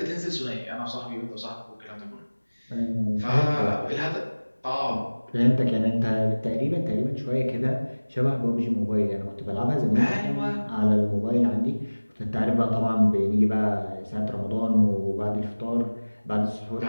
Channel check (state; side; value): inverted; both; correlation -1.00